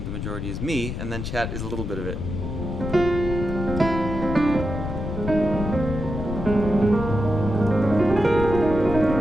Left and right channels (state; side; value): noise; left; rumble, 5 dB below the sound